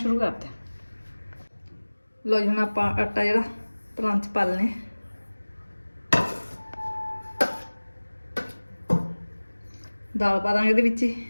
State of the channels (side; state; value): both; inverted; correlation -1.00